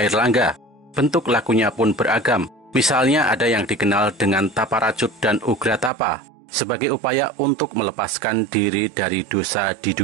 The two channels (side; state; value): left; drops out; at 5.9 s